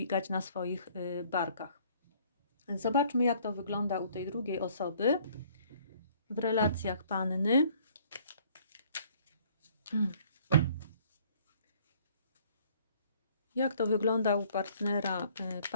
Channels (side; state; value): both; inverted; correlation -0.58